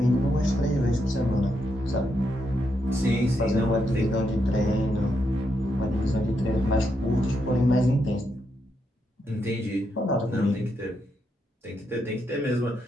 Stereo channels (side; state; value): both; normal; correlation 0.81